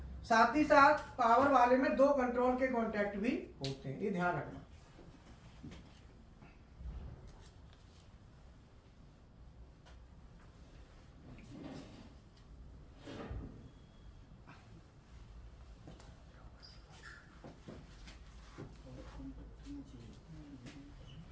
साथ ही साथ पावर वाले में 2 कंट्रोल के कॉन्टैक्ट भी होते हैं, ये ध्यान रखना।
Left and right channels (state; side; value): identical; both; correlation 1.00